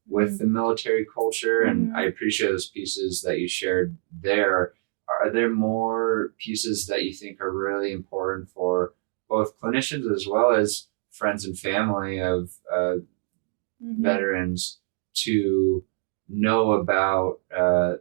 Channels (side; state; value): left; silent; digital silence